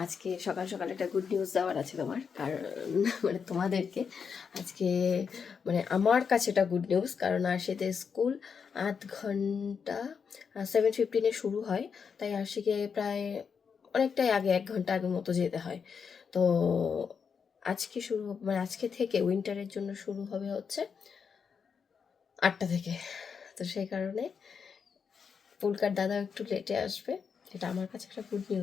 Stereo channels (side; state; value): right; quieter; 6.3 dB